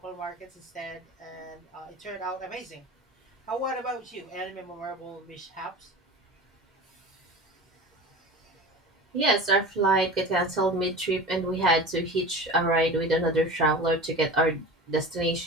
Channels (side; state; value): both; normal; correlation 0.33